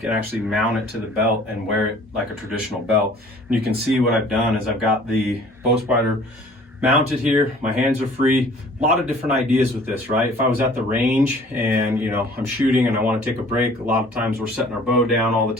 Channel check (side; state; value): both; normal; correlation 0.52